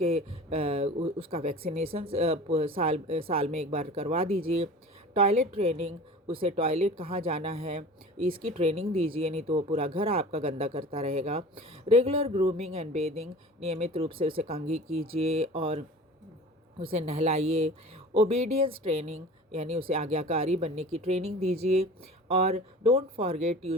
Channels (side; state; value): both; normal; correlation 0.39